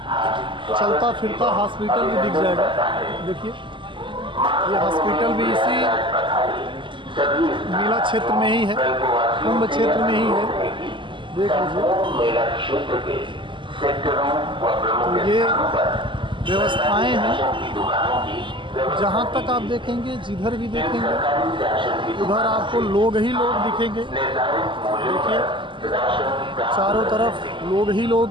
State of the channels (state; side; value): late; left; 0.24 ms